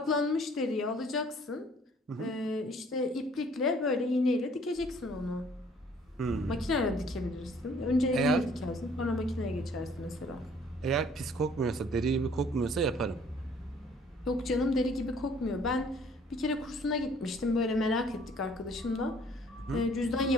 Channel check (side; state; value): both; normal; correlation 0.58